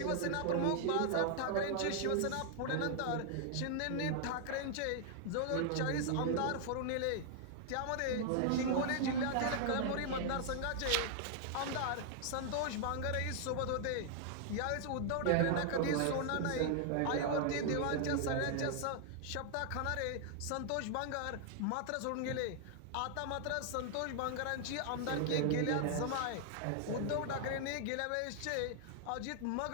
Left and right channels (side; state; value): both; different; correlation 0.00